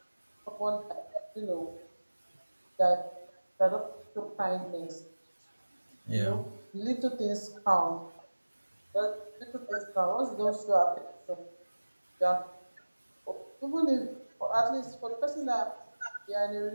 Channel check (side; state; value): both; inverted; correlation -1.00